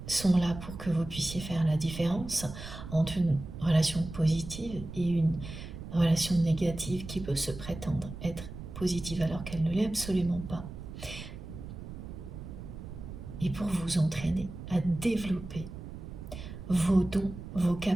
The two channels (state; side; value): noise; right; rumble, 11 dB below the sound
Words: sont là pour que vous puissiez faire la différence entre une relation positive et une relation négative qui peut se prétendre être positive alors qu'elle ne l'est absolument pas. Et pour vous entraîner à développer vos dons, vos